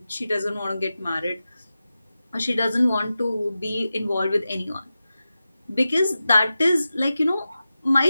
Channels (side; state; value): both; inverted; correlation -0.93